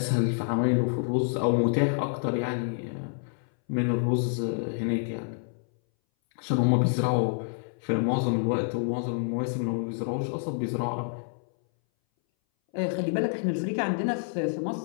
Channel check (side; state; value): right; silent; 59 dB below the other